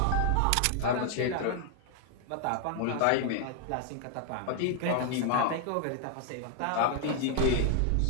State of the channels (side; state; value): both; different; correlation 0.00